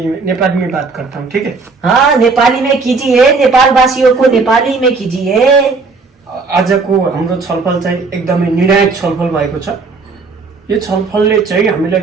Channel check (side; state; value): left; quieter; 4.3 dB